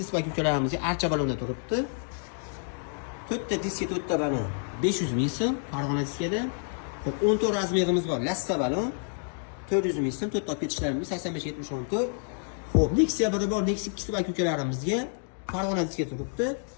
aka-ukalarimizga archa balonda turibdi. 4 ta diska 4 ta balon 500 ming so'm Farg'ona diskada. Xo'p, 14 razmerimiz bor. Lassa balon 400 ming so'm, 4 ta ketishlarimiz 85-74. Xo'p, Nexia biri bor. Nexia 2 ta aka-ukalarimizga Farg'ona diskada turibdi.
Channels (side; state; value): right; silent; 59 dB below the other